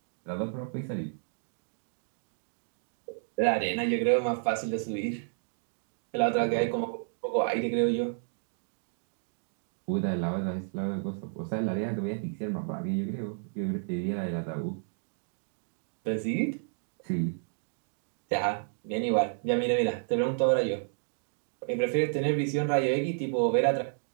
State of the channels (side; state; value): left; silent; digital silence